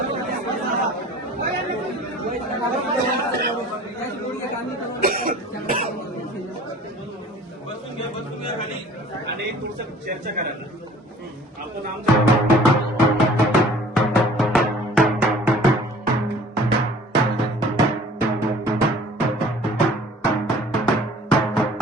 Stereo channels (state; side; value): normal; both; correlation 0.49